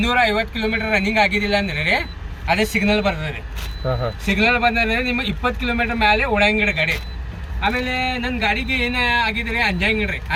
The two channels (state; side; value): identical; both; correlation 1.00